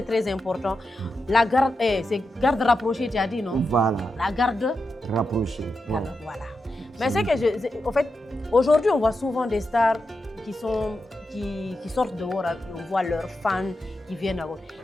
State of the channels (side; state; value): both; normal; correlation 0.88